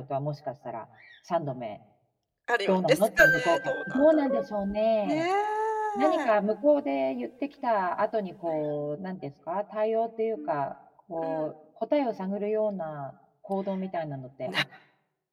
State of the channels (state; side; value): identical; both; correlation 1.00